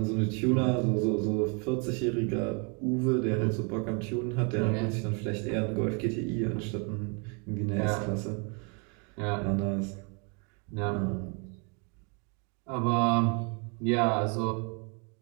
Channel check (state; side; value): quieter; left; 35.6 dB